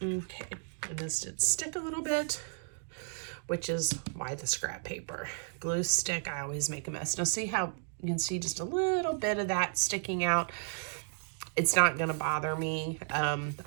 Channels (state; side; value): silent; left; 56 dB below the other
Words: Okay, and this did stick a little bit, which is why the scrap paper. Glue stick, I always make a mess. Now see how you can see just a little bit of that sticking out? It's not gonna bother me.